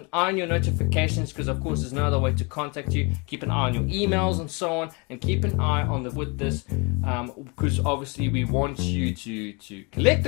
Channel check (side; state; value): right; quieter; 30.6 dB